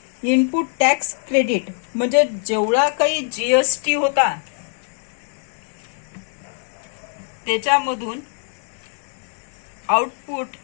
इनपुट टॅक्स क्रेडिट. म्हणजे जेवढा काही जीएसटी होता त्याच्यामधून आउटपुट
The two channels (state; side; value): silent; right; 59 dB below the other